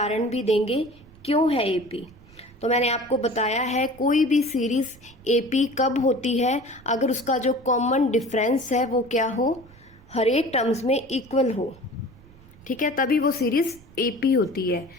भी देंगे क्यों है एपी। तो मैंने आपको बताया है, कोई भी सीरीज एपी कब होती है, अगर उसका जो कॉमन डिफरेंस है वो क्या हो, हर एक टर्म्स में इक्वल हो, ठीक है, तभी वो सीरीज एपी होती है।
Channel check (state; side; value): noise; right; rumble, 24 dB below the sound